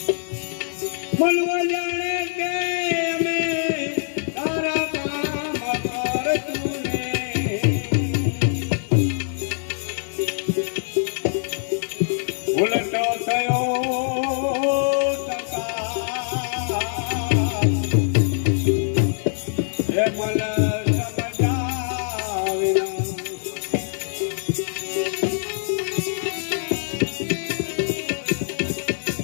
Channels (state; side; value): silent; right; digital silence